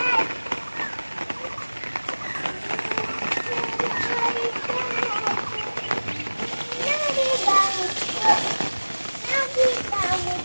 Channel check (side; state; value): both; inverted; correlation -1.00